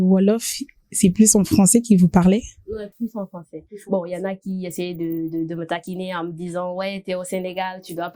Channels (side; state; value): both; identical; correlation 1.00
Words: c'est plus en français qu'ils vous parlaient? Ouais, plus en français. Bon, il y en a qui essayaient de me taquiner en me disant, ouais, t'es au Sénégal, tu dois